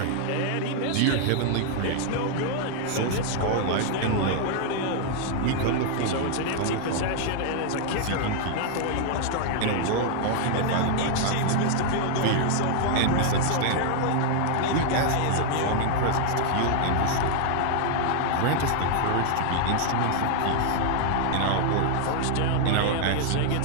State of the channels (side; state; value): both; different; correlation 0.00